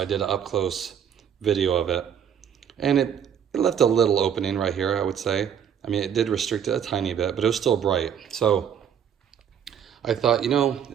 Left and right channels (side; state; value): left; quieter; 8.5 dB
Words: did an up close video of it, and it left a little opening right here, I would say. I mean, it did restrict it a tiny bit, but it was still bright. So I thought, you know,